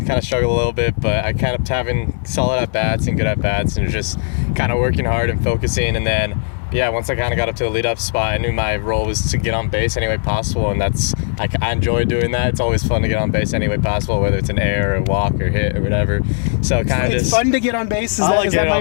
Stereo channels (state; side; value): silent; right; digital silence